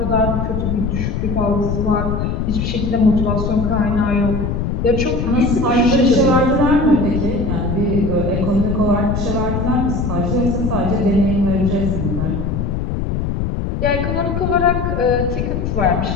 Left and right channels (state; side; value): noise; left; rumble, 1 dB below the sound